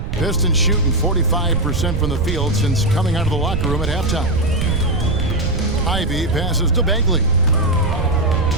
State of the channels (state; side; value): noise; right; rumble, 3 dB below the sound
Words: Pistons shooting 45% from the field since coming out of the locker room at halftime. Ivy passes to Bagley.